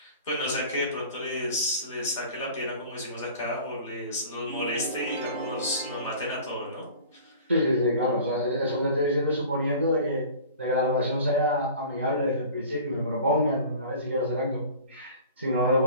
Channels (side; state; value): both; inverted; correlation -0.43